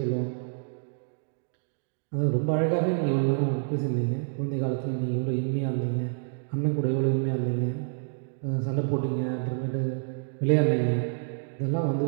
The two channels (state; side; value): silent; left; digital silence